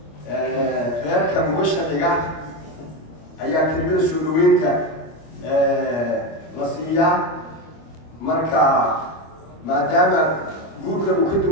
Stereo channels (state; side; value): late; right; 25 ms